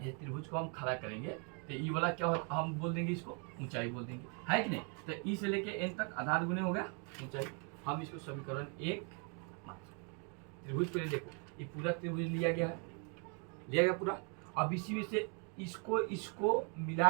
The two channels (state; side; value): quieter; left; 37.8 dB